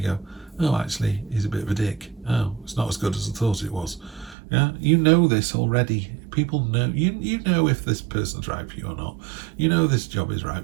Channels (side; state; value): left; drops out; at 4.4 s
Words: go, oh, actually, he's a bit of a dick. Oh, it's not as good as I thought it was. Yeah, you know this already. People know, you know if this person's right for you or not. You know this job is right